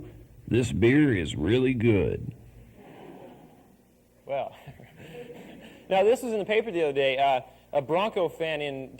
this beer is really good. Well, now this was in the paper the other day. A Bronco fan in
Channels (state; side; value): identical; both; correlation 1.00